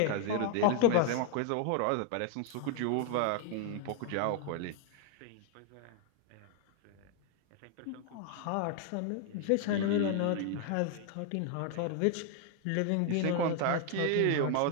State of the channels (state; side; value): different; both; correlation 0.00